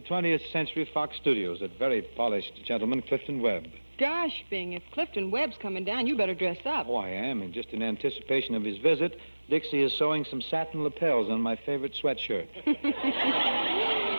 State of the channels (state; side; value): inverted; both; correlation -1.00